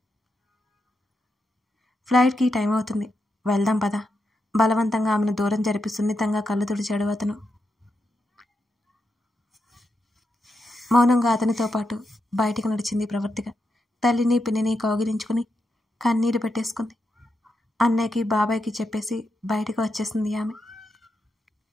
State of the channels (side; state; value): both; normal; correlation 0.85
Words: ఫ్లైట్కి టైం అవుతుంది, వెళ్దాం పద. బలవంతంగా ఆమెను దూరం జరిపి సున్నితంగా కళ్ళు తుడిచాడు అతను. మౌనంగా అతనితో పాటు బయటికి నడిచింది ప్రవర్తిక. తల్లిని పిన్నిని కౌగిలించుకుని కన్నీరు పెట్టేసుకుంది. అన్నయ్యకి బాబాయ్కి చెప్పేసి బయటకు వచ్చేసింది ఆమె.